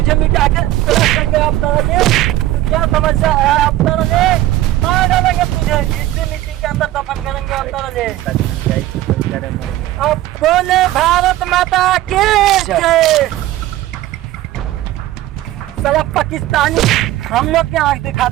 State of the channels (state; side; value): quieter; left; 14.9 dB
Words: मिटा के अब तरह क्या समस्या है? अब तरह मार डालेंगे तुझे, इसी मिट्टी के अंदर दफन करेंगे। अब तरह अब बोले भारत माता की जय। साला पाकिस्तानी हम लोग क्या आँख